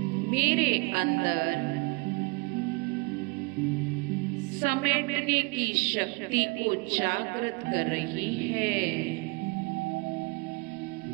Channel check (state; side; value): quieter; left; 26.9 dB